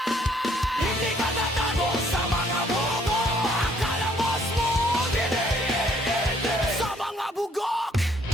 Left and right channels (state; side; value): normal; both; correlation 0.64